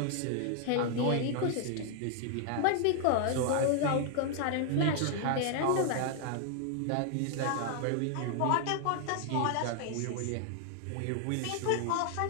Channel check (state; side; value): different; both; correlation 0.00